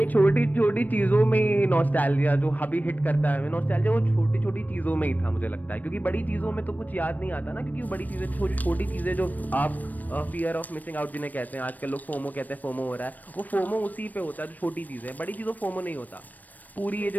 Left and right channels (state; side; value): late; right; 0.083 ms